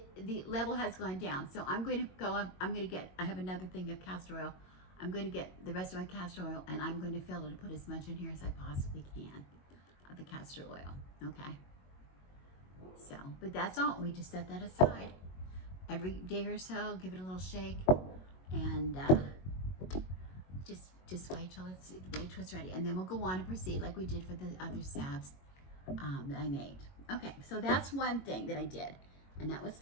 the level has gone down. So I'm going to go up. I have another thing of castor oil. I'm going to get the rest of my castor oil, and I'm going to fill it and put as much in here as I possibly can of the castor oil. Okay. So, but that's all. We just set that aside. Every day or so, give it a little shake, and just wait till it's ready, and then we'll go on and proceed like we did for the other salves that I made. Okay, so that's one thing that I did, and that was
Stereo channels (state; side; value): late; right; 22 ms